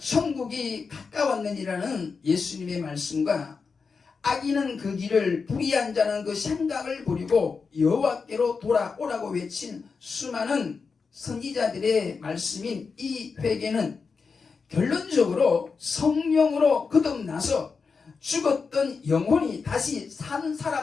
가까웠느니라는 예수님의 말씀과 악인은 그 길을 불의한 자는 그 생각을 버리고 여호와께로 돌아오라고 외친 수많은 선지자들의 말씀인 이 회개는 결론적으로 성령으로 거듭나서 죽었던 영혼이 다시 산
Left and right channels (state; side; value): quieter; right; 5.1 dB